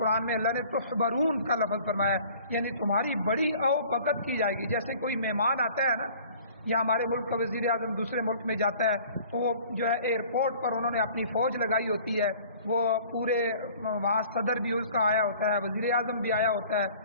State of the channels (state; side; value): inverted; both; correlation -0.50